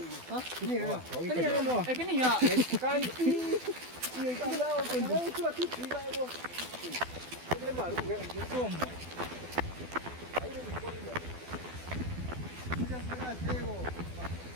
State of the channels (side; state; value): left; late; 12 ms